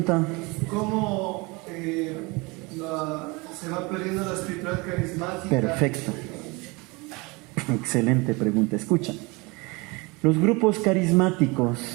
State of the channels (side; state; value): left; quieter; 26.2 dB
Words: ¿Cómo se va perdiendo la espiritualidad carismática? Perfecto. Excelente pregunta. Escucha. Los grupos carismáticos,